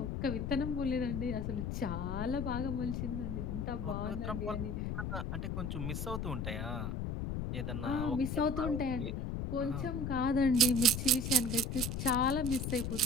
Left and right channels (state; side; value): noise; left; rumble, 2 dB below the sound